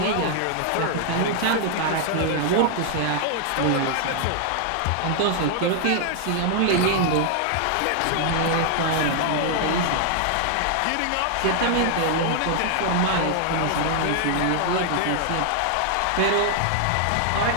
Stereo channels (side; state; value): both; different; correlation 0.00